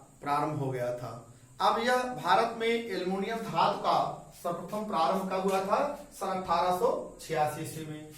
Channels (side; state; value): both; identical; correlation 1.00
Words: प्रारंभ हो गया था। अब यह भारत में एल्युमिनियम धातु का सर्वप्रथम प्रारंभ कब हुआ था? सन 1886 ईस्वी में।